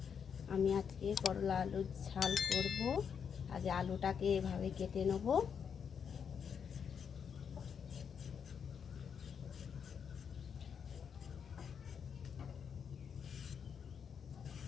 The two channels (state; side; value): quieter; right; 7.1 dB